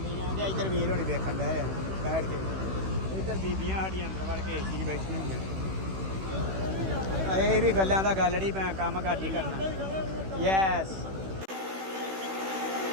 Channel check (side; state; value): left; late; 16 ms